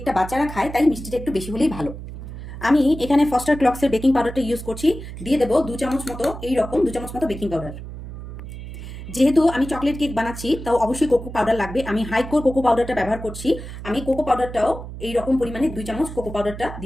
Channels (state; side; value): noise; right; hum, 11 dB below the sound